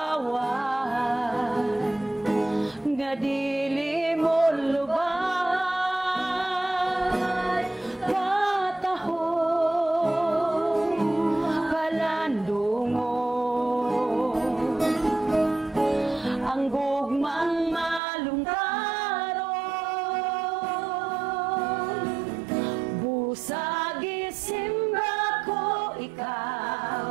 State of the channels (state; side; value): drops out; left; at 18.0 s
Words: nga dili mo lubay katahong palandungon ang gugmang malungtaron busagi simba ko